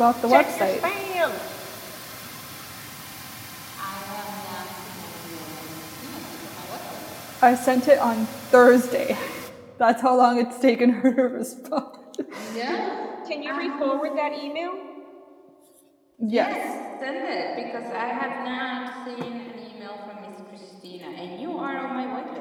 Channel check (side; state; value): both; identical; correlation 1.00